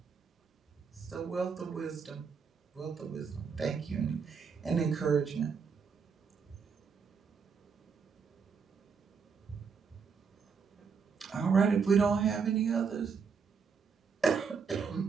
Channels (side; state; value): left; quieter; 5.8 dB